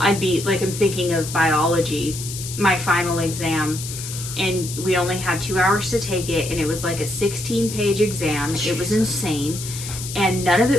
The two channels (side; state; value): left; noise; hiss, 9 dB below the sound